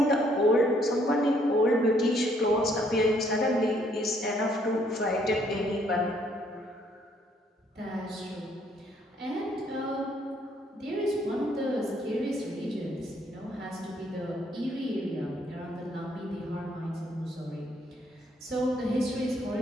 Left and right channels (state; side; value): normal; both; correlation 0.67